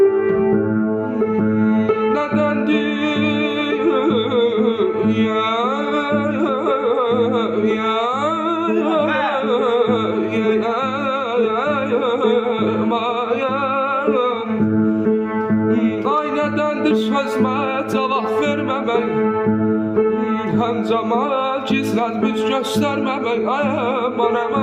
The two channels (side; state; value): both; identical; correlation 1.00